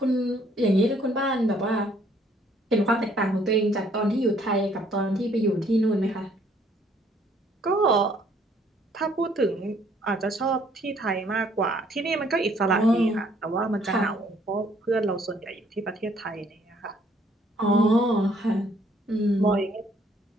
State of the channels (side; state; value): both; normal; correlation 0.64